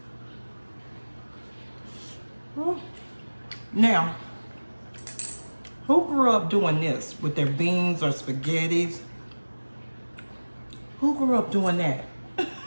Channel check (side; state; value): both; inverted; correlation -1.00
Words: Now, who grew up doing this with their beans or spaghettis? Who grew up doing that?